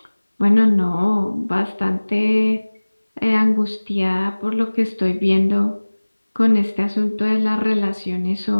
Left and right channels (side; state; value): both; inverted; correlation -1.00